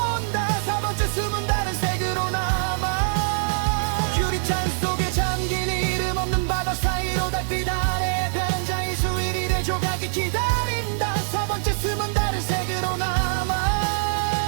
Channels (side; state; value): left; silent; digital silence